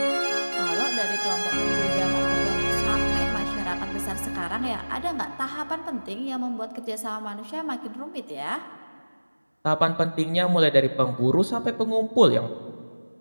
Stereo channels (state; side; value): inverted; both; correlation -1.00